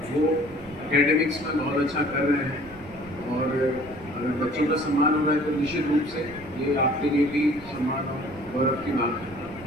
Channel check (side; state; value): right; noise; rumble, 21 dB below the sound